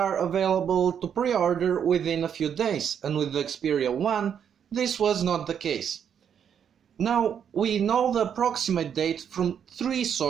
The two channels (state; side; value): quieter; left; 8.2 dB